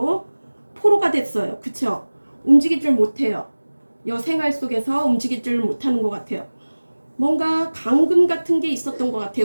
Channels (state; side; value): inverted; both; correlation -1.00